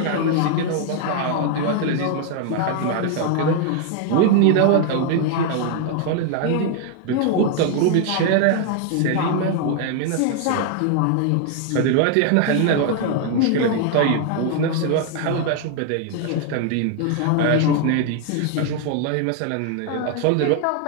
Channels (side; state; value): both; different; correlation 0.00